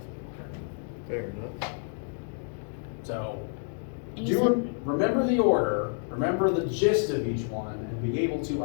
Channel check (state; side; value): silent; right; 59 dB below the other